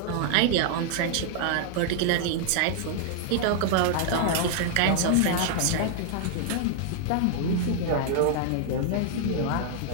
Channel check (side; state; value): both; different; correlation -0.01